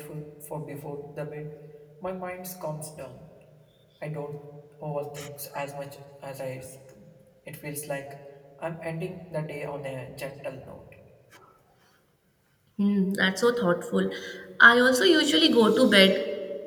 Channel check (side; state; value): both; identical; correlation 1.00